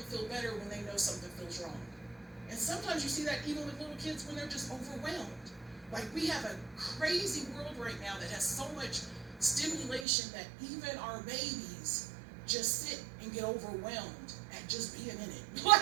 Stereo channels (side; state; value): left; drops out; at 10.1 s